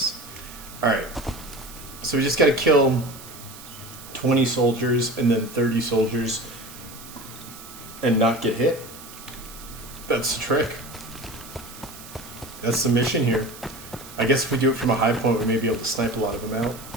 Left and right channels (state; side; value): noise; right; hiss, 16 dB below the sound